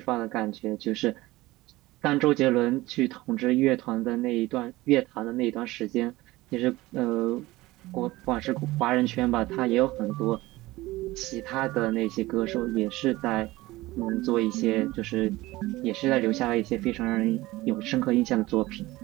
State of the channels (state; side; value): quieter; left; 19.0 dB